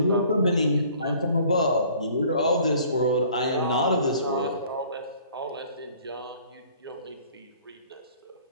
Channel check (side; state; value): both; inverted; correlation -0.54